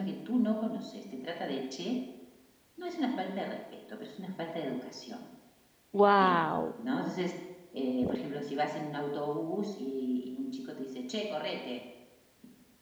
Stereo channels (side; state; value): both; identical; correlation 1.00